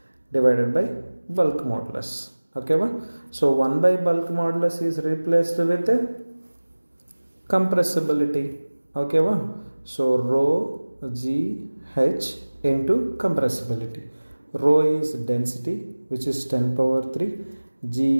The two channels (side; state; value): both; inverted; correlation -1.00